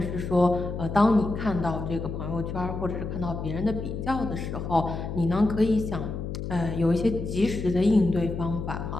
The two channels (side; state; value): left; noise; hum, 5 dB below the sound